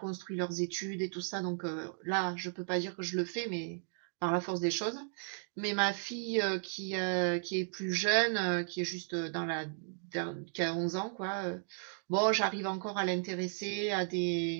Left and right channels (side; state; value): left; silent; digital silence